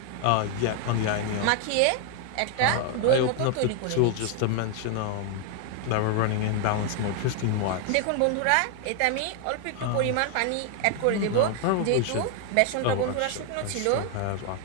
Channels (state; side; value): different; both; correlation 0.00